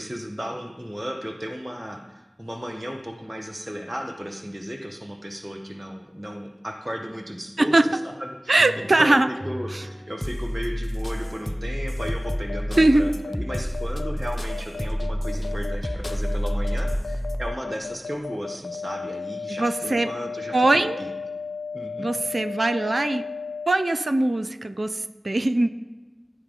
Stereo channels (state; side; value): normal; both; correlation 0.97